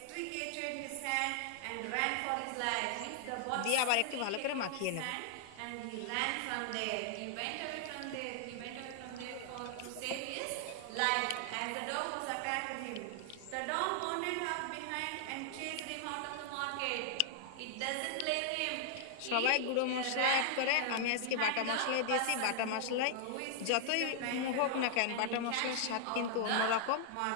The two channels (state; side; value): different; both; correlation 0.00